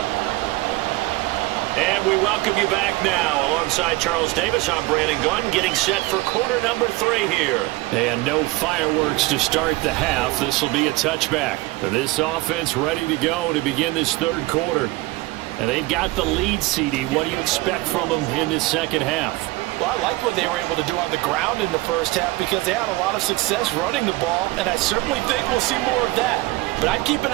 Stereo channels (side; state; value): left; quieter; 20.2 dB